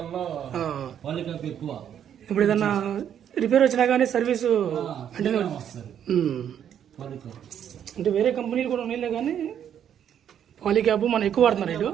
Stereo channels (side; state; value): left; quieter; 9.3 dB